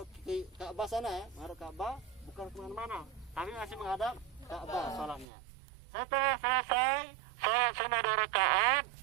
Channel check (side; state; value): left; drops out; at 5.2 s